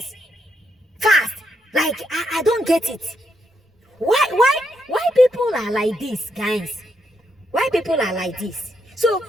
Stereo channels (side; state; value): both; normal; correlation 0.78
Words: fast. Like I don't get it. Why people are like this, guys? Why people are like this? So